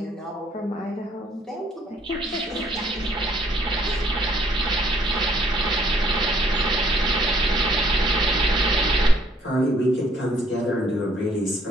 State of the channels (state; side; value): normal; both; correlation 0.63